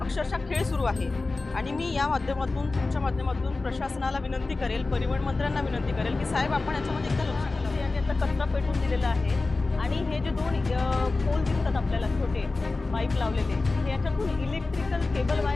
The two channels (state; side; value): quieter; right; 3.5 dB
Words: खेळ सुरू आहे. आणि मी या माध्यमातून, तुमच्या माध्यमातून प्रशासनाला विनंती करेल, परिवहन मंत्र्यांना विनंती करेल की साहेब, आपण याच्यामध्ये एकदा लक्ष घालावं. यांनी आता कचरा पेटवून दिलेला आहे आणि हे जे दोन पोल दिसतात आपल्याला, छोटे पाईप लावलेले, हे याच्यातून इलेक्ट्रिकल केबल